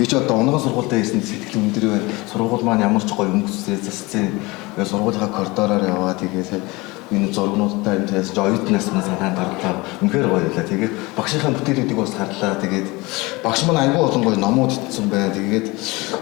ч одоо онгон сургуультай хийсэн сэтгэл өндөр байна. Сургууль маань ямар ч гоё өнгөцтэй засцээ. Тэгээд сургуулийнхаа коридороор яваа тэгээд энэ зургнуудтай энэ тэгээс оюутнаас маань санаанд орлоо. Үнэхээр гоё байлаа. Тэгээд багшийнхаа бүтээлүүдийг бас харлаа. Тэгээд багш маань аягүй олон гоё номууд итсэн байна. Тэгээд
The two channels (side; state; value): right; quieter; 23.5 dB